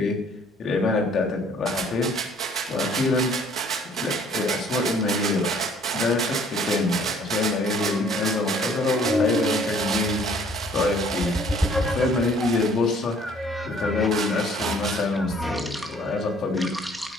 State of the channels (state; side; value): normal; both; correlation 0.58